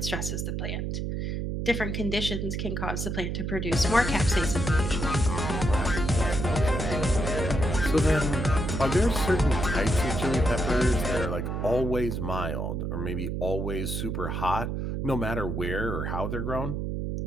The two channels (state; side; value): noise; right; hum, 2 dB below the sound